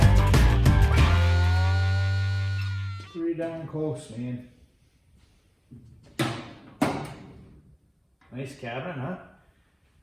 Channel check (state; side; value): identical; both; correlation 1.00